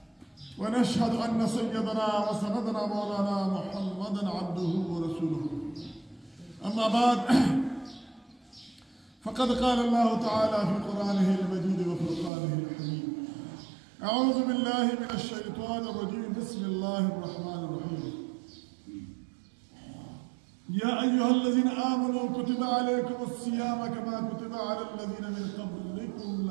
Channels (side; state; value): left; drops out; at 12.3 s